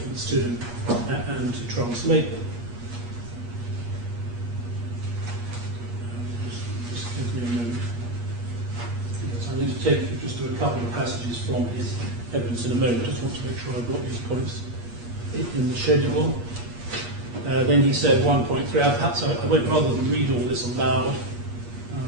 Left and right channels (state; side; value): late; left; 8.4 ms